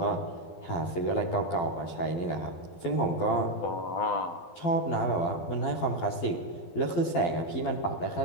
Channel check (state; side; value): late; right; 12 ms